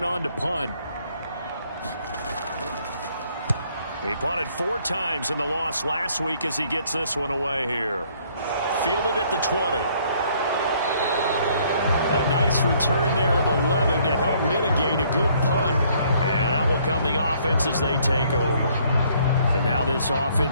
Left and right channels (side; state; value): both; inverted; correlation -0.64